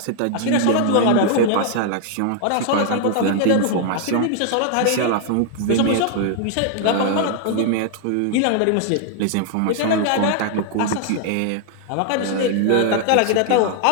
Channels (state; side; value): different; both; correlation 0.00